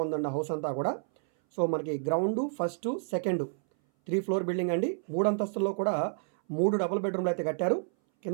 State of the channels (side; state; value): left; silent; 58 dB below the other